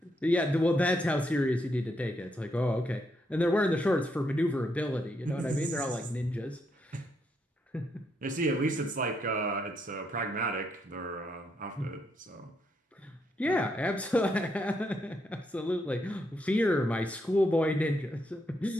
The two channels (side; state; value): both; normal; correlation 0.78